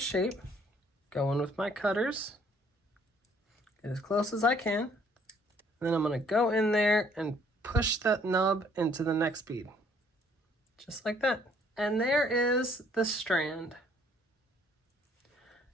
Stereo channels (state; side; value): normal; both; correlation 0.62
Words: shape. Go in with my cutters. Get as close as I can. And then I'm going to go in there and push that nub into the next bead. Just like that. And there is the strand.